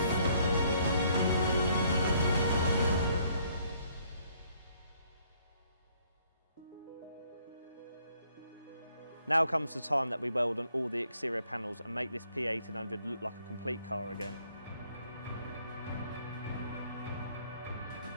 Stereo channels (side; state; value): both; inverted; correlation -0.65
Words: Now comes the time that we weld on all the exterior panels and make this P1800 look like a complete car again.